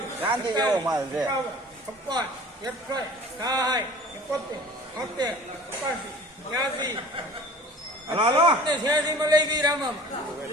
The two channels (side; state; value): both; normal; correlation 0.45